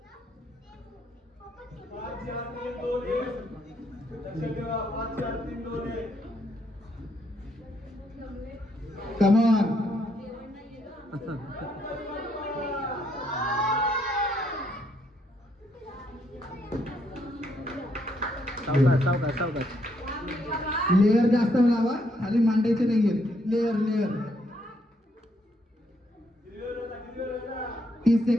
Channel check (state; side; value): normal; both; correlation 0.73